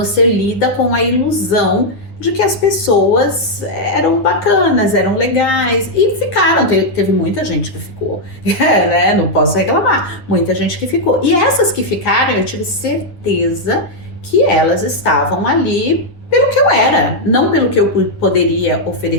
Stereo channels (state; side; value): late; right; 9.6 ms